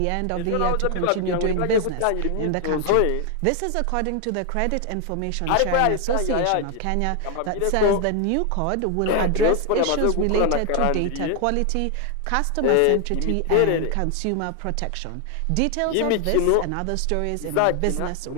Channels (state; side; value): different; both; correlation 0.00